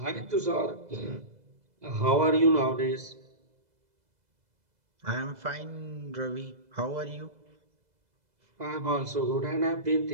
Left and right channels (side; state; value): left; late; 2.0 ms